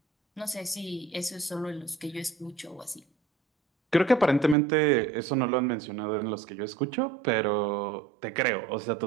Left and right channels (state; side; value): drops out; left; at 4.5 s